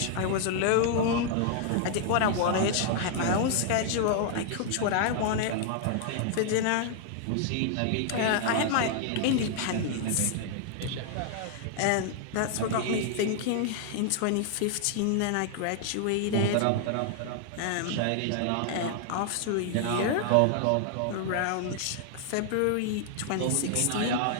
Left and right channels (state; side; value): different; both; correlation 0.00